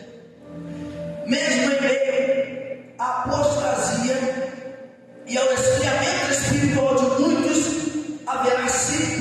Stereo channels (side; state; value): both; identical; correlation 1.00